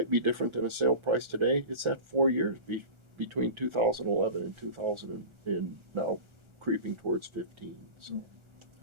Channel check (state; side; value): late; left; 1.4 ms